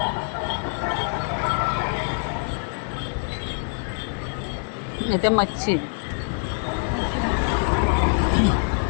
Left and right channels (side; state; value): right; silent; digital silence